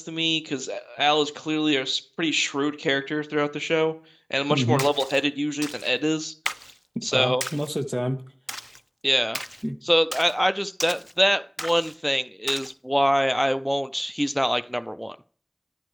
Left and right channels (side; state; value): both; identical; correlation 1.00